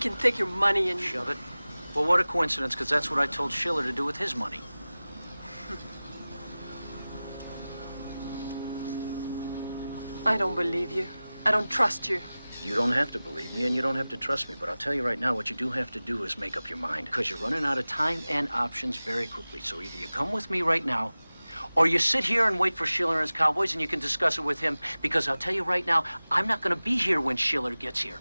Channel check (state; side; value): inverted; both; correlation -0.97